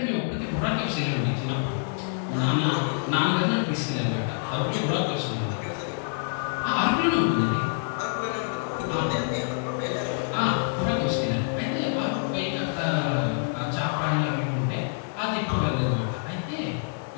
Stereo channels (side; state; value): right; silent; digital silence